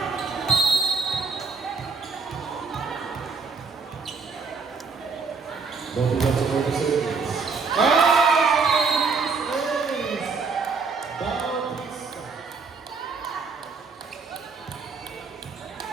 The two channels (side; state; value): left; quieter; 4.7 dB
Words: Don't forget to go to service.